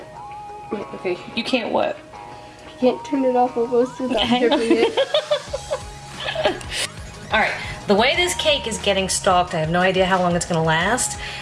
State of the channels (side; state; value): both; identical; correlation 1.00